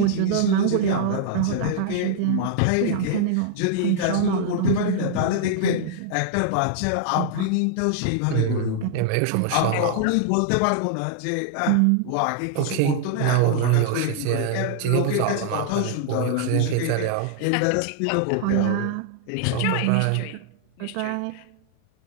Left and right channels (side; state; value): both; different; correlation -0.01